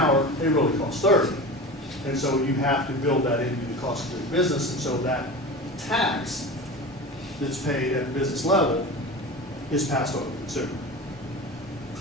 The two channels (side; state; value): both; normal; correlation 0.31